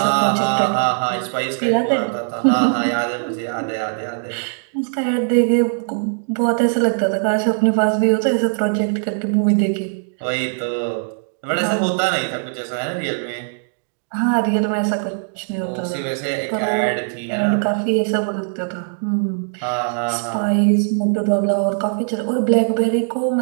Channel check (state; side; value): silent; left; digital silence